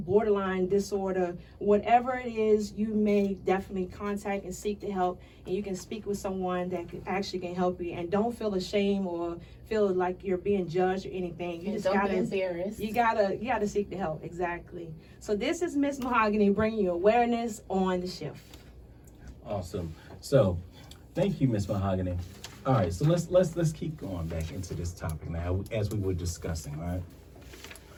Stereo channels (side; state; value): both; identical; correlation 1.00